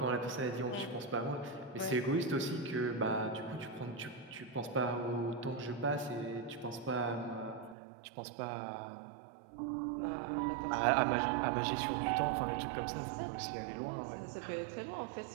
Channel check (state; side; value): drops out; left; at 7.8 s